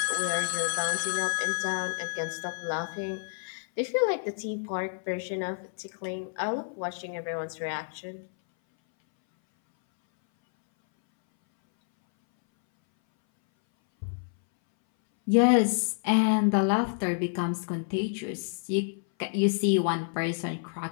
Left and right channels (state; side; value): silent; right; 59 dB below the other